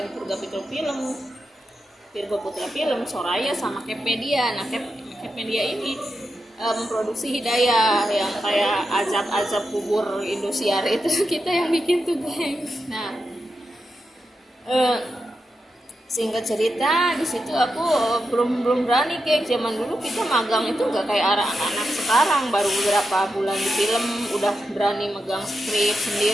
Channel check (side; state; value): both; normal; correlation 0.88